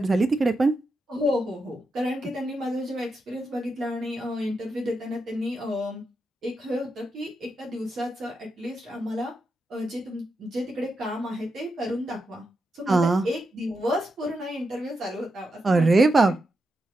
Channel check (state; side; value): normal; both; correlation 0.86